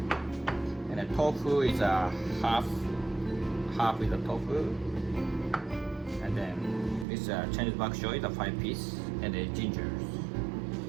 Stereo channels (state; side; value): drops out; left; at 7.1 s